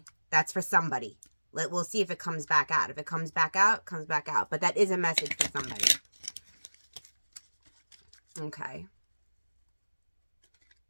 That's for somebody. We'll see if it comes back out. If it comes back out, comes back out. But that is a message for somebody. Okay.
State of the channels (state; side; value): inverted; both; correlation -1.00